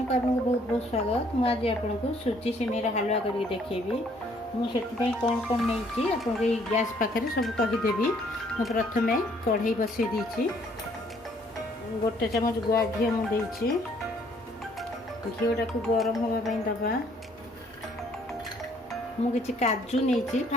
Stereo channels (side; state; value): both; normal; correlation 0.63